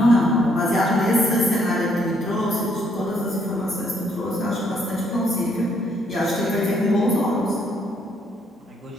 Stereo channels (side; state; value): both; normal; correlation 0.70